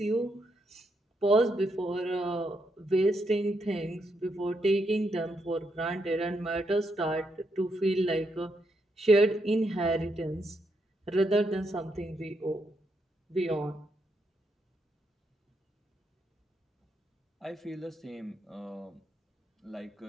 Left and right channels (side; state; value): both; normal; correlation 0.79